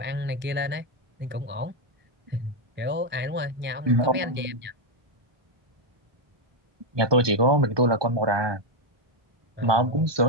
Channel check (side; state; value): left; late; 1.2 ms